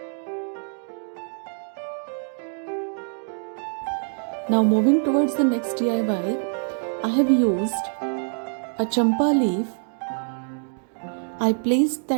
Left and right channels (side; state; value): left; silent; 62 dB below the other